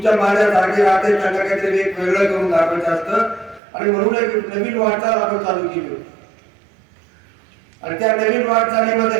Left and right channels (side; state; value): left; drops out; at 3.6 s